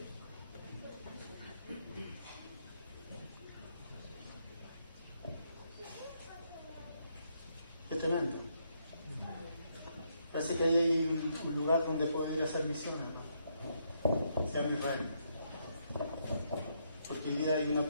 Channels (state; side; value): inverted; both; correlation -0.75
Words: Qué tremendo. Parece que ahí hay un lugar donde poder ir a hacer misiones, ¿no? Sea en Israel. Porque hoy día hay una